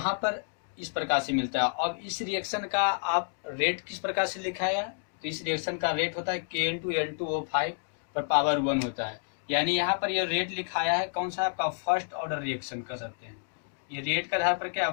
पर इस प्रकार से मिलता है। अब इस रिएक्शन का आप रेट किस प्रकार से लिखाया, तो इस रिएक्शन का रेट होता है Kn2N2O5 पर पावर 1 होता है। यानी यहाँ पर ये रेट लिखाया है कौन सा, आपका फर्स्ट ऑर्डर रिएक्शन कर सकते हैं। ये रेट का आधार पर क्या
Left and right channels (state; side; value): silent; right; digital silence